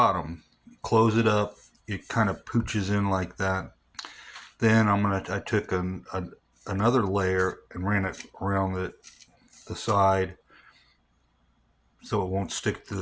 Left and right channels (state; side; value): identical; both; correlation 1.00